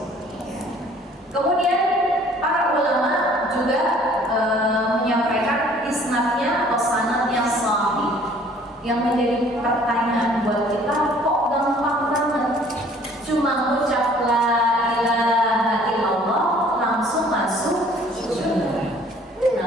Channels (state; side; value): normal; both; correlation 0.55